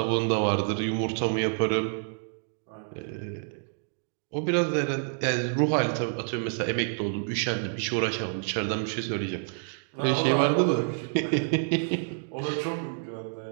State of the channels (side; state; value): left; silent; digital silence